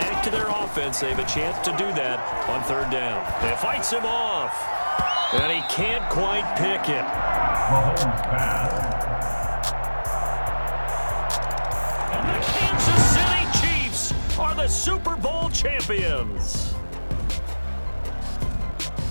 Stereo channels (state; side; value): inverted; both; correlation -1.00